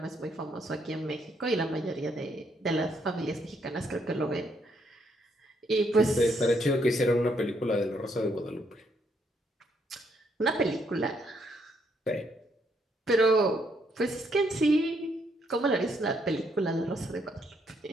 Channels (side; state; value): both; normal; correlation 0.73